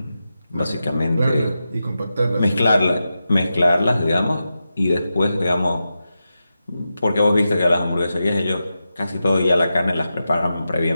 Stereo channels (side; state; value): both; inverted; correlation -0.90